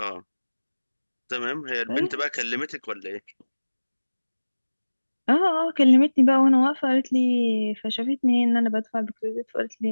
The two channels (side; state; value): both; inverted; correlation -1.00